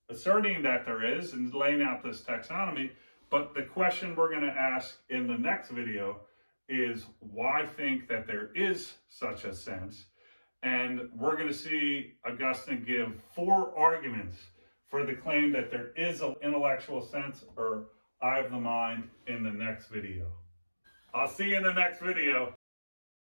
asserting that there is and laying out this taxonomy, but the question we're going to ask in the next video is why think that there is such a sense? And we're going to see Augustine give 4 arguments for the claim that there is an intellectual sense or eye of the mind in the next video. I'll see you in the next video.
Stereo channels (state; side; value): inverted; both; correlation -1.00